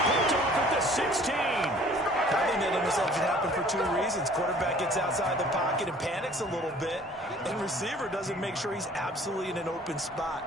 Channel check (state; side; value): normal; both; correlation 0.52